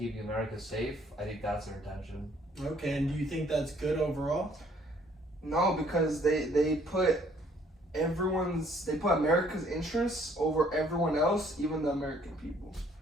America safe, I think that's their intention. Okay, and do you think that's good overall? No, because they put America's interests over everyone else, even the American people.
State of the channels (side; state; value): both; normal; correlation 0.62